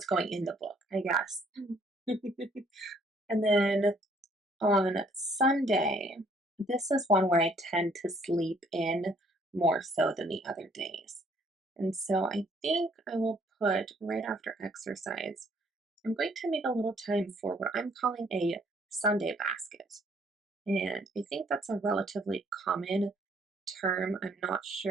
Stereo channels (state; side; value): normal; both; correlation 0.63